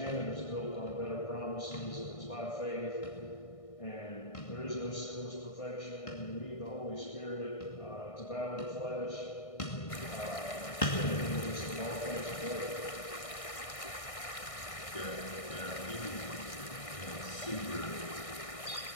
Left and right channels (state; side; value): late; right; 1.6 ms